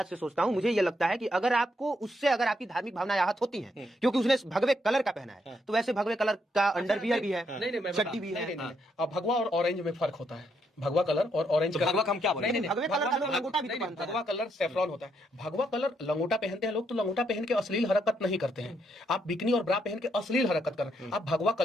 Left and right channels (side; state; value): both; normal; correlation 0.76